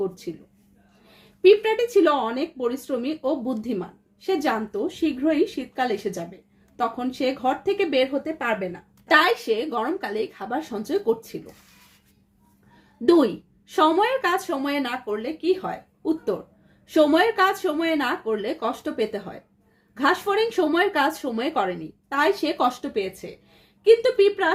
করছিল। পিঁপড়াটি ছিল অনেক পরিশ্রমী ও বুদ্ধিমান। সে জানতো শীঘ্রই শীতকাল এসে যাবে, তখন সে ঘর থেকে বের হতে পারবে না, তাই সে গরমকালেই খাবার সঞ্চয় করছিল। 2, সময়ের কাজ সময়ে না করলে কি হয়? উত্তর, সময়ের কাজ সময়ে না করলে কষ্ট পেতে হয়। ঘাসফড়িং সময়ের কাজ সময়ে করেনি, তাই সে কষ্ট পেয়েছে, কিন্তু পিঁপড়া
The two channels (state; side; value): identical; both; correlation 1.00